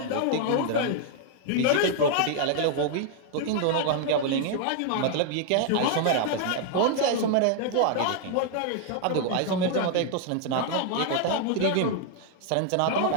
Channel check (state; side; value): different; both; correlation 0.00